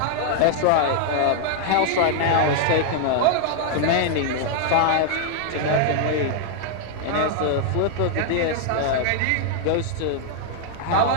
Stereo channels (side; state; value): both; different; correlation -0.01